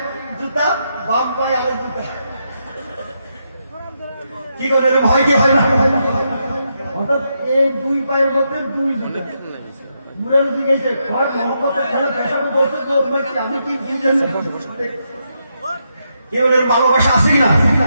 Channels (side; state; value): both; inverted; correlation -0.82